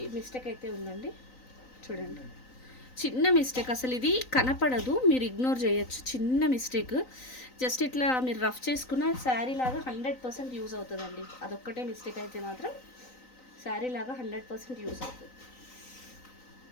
మిస్టేక్ అయితే ఉందండి. చూడండి, చిన్న మిస్టేక్, అసలు ఇది కనపడదు, మీరు ఇగ్నోర్ చేయొచ్చు. చిన్న మిస్టేక్, జస్ట్ ఇట్లా మీరు రఫ్ చేసుకున్న శారీ లాగా 100% యూజ్ అవుతుందండి. అదొక్కటే మిస్టేక్ అయితే మాత్రం శారీ లాగా 100% యూజ్ అవుతుంది.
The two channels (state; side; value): late; right; 3.9 ms